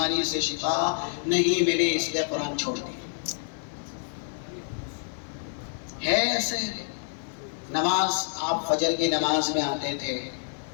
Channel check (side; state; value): right; silent; 60 dB below the other